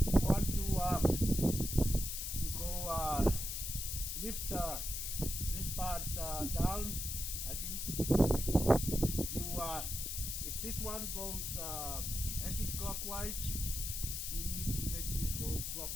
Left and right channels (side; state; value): left; noise; hiss, 3 dB below the sound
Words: want to go lift this part down, I think you if this one goes anti-clockwise, you need to make this go